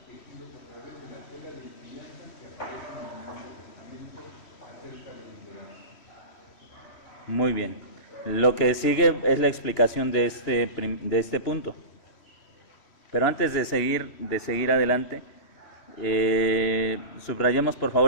tejidos a través de la tela de enseñanzas que aparecen en el Nuevo Testamento acerca del liderazgo. Muy bien. Lo que sigue es la explicación de este punto. Pero antes de seguir adelante, subrayemos por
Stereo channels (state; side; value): late; right; 3.1 ms